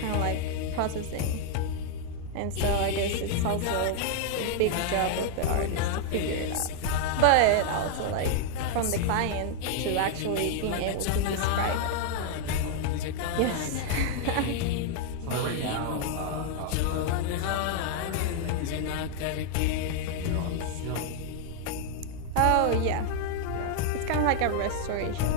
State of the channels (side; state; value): both; different; correlation 0.00